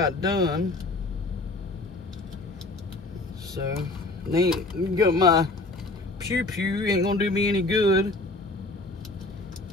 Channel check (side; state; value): right; quieter; 3.0 dB